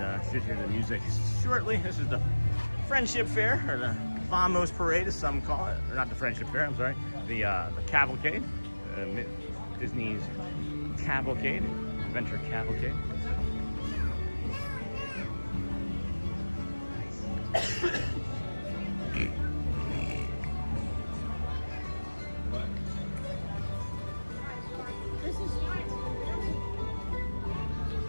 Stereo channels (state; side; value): inverted; both; correlation -1.00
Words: should hear the music shortly. This is the Friendship Fair, or the Vamos Parade as some call it, or not the Friendship Fair, I'm sorry, the Cavalcade, Disney's Cavalcade, Adventure Cavalcade.